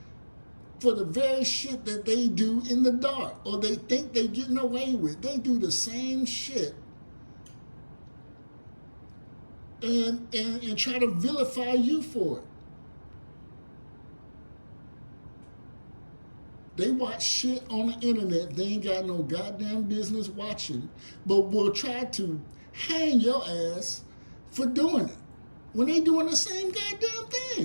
for the very shit that they do in the dark or they think they're getting away with. They do the same shit and try to vilify you for it. They watch shit on the internet they ain't got no goddamn business watching, but will try to hang your ass for doing it when they doing the same goddamn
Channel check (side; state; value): both; inverted; correlation -1.00